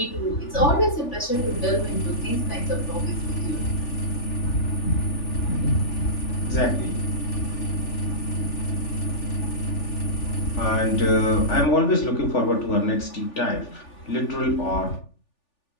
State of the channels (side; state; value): right; late; 3.4 ms